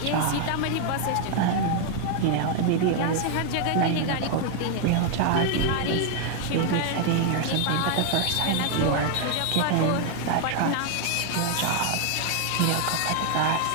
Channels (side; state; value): both; different; correlation 0.00